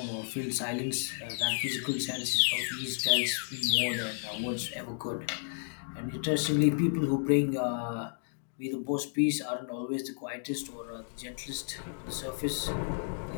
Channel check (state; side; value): silent; right; digital silence